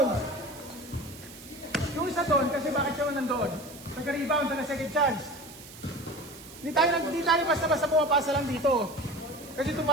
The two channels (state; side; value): noise; right; hiss, 17 dB below the sound